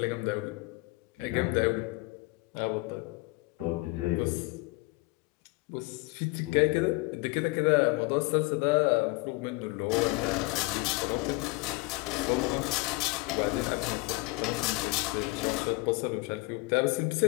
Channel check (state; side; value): quieter; right; 24.2 dB